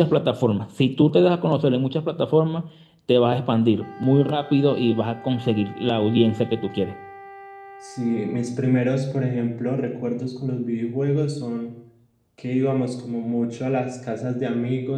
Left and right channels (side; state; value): both; identical; correlation 1.00